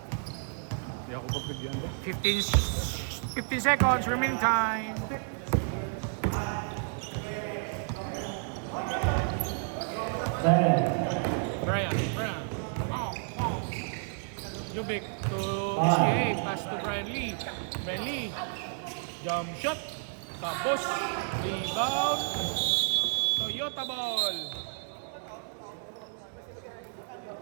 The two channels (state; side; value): silent; left; 57 dB below the other